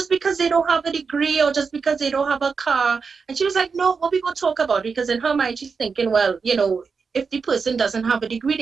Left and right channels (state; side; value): quieter; left; 5.2 dB